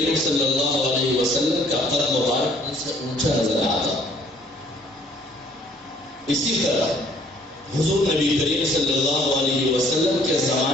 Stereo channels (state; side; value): normal; both; correlation 0.60